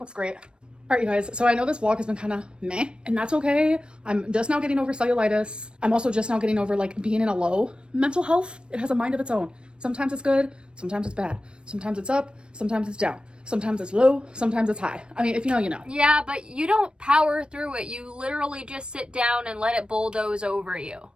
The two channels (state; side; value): late; left; 0.055 ms